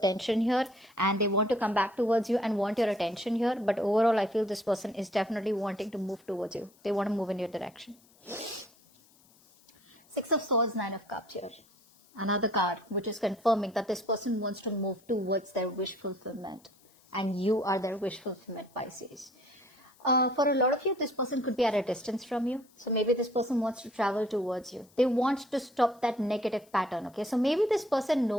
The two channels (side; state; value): left; noise; hiss, 30 dB below the sound